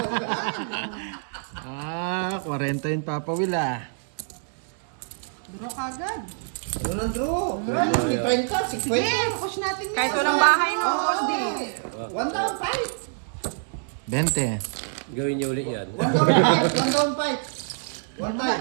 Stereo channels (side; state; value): left; silent; 56 dB below the other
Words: Ah, 40 yung Papa Will, ah. Draw kagad. Ano na draw? 30, 30, 50. Sige, push natin yan. Kahit walang bahay no, boss D. 1 down fight. 20. Gawin niyo ulit yan. 1 down fight. 1 down fight. 1